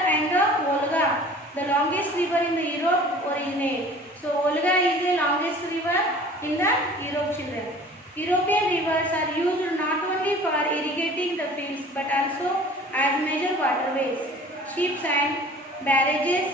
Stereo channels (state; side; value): normal; both; correlation 0.46